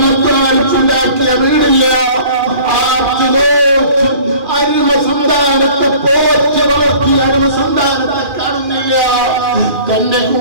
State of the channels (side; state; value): left; late; 2.4 ms